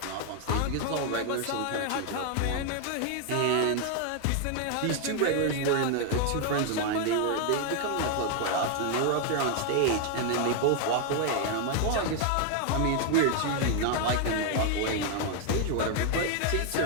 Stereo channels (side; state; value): both; different; correlation 0.00